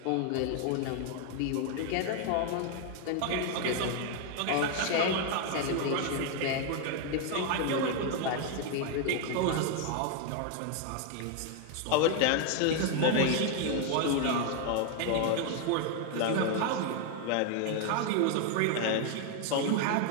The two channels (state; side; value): different; both; correlation 0.01